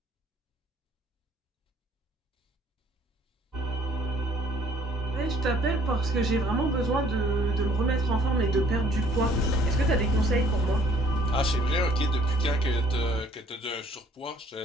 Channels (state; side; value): normal; both; correlation 0.60